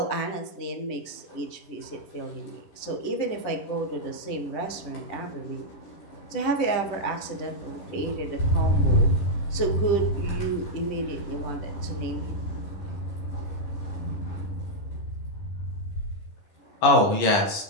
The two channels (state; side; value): late; right; 10 ms